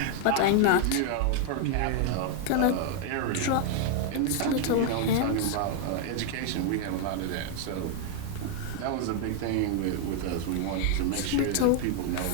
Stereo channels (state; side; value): different; both; correlation 0.00